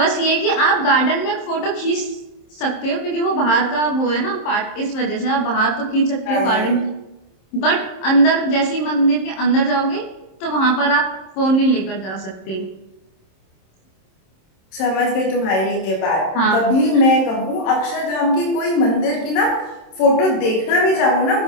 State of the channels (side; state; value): right; late; 26 ms